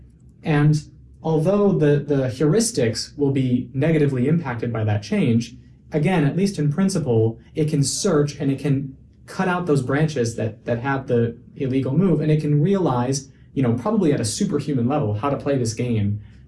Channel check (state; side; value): identical; both; correlation 1.00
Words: And although the heuristics will be negatively impacted by that change, again, at least in principle, it can search and it can cut out those branches that have the illegal move, and it can realize, probably at a superhuman level, how to play this game,